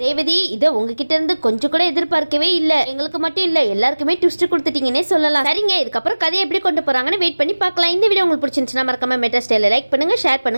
இதை உங்ககிட்ட இருந்து கொஞ்சம் கூட எதிர்பார்க்கவே இல்ல, எங்களுக்கு மட்டும் இல்ல எல்லாருக்குமே ட்விஸ்ட் கொடுத்துட்டீங்கன்னே சொல்லலாம். சரிங்க, இதுக்கப்புறம் கதையை எப்படி கொண்டு போறாங்கன்னு வெயிட் பண்ணி பார்க்கலாம். இந்த வீடியோ உங்களுக்கு பிடிச்சிருந்துச்சுன்னா மறக்காம மெட்ரா ஸ்டைல லைக் பண்ணுங்க, ஷேர்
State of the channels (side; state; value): both; inverted; correlation -1.00